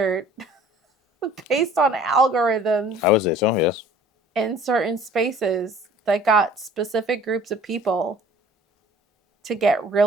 based on algorithms I would say so, yes. in certain spaces that got specific groups of people to get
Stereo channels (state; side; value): normal; both; correlation 0.51